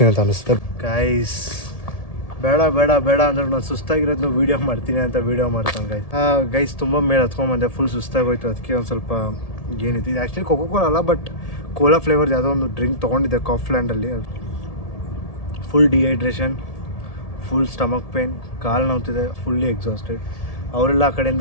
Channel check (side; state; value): right; late; 1.7 ms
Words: ಅಂತ ಅನಿಸುತ್ತೆ ಗೈಸ್. ಬೇಡ ಬೇಡ ಬೇಡ ಅಂದ್ರೆ ನಾನು ಸುಸ್ತಾಗಿರೋದನ್ನು ವೀಡಿಯೋ ಮಾಡ್ತೀನಿ ಅಂತ ವೀಡಿಯೋ ಮಾಡ್ತಾನೆ ಗೈಸ್. ಗೈಸ್ ತುಂಬ ಮೇಲೆ ಹತ್ಕೊಂಡ್ಬಂದೆ, ಫುಲ್ ಸುಸ್ತಾಗೋಯ್ತು. ಅದಕ್ಕೆ ಒಂದು ಸ್ವಲ್ಪ ಏನಿದೆ, ಇದು ಆ್ಯಕ್ಚುಲಿ ಕೋಕೋ ಕೋಲಾ ಅಲ್ಲ, ಬಟ್ ಕೋಲಾ ಫ್ಲೇವರ್ದು ಯಾವುದೋ ಒಂದು ಡ್ರಿಂಕ್ ತೊಗೊಂಡಿದ್ದೆ ಕಾಫ್ಲ್ಯಾಂಡಲ್ಲಿ. Full dehydration, full stomach pain, ಕಾಲು ನೋವ್ತಿದೆ, ಫುಲ್ಲಿ ಎಕ್ಸಾಸ್ಟೆಡ್. ಅವರೆಲ್ಲ ಆ